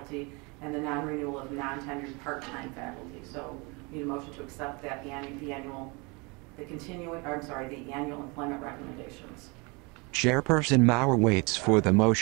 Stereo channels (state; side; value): quieter; left; 28.7 dB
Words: and the non-renewal of non-tenured part-time faculty. So we need a motion to accept that the annual employment recommendations. Chairperson Mauer waits for the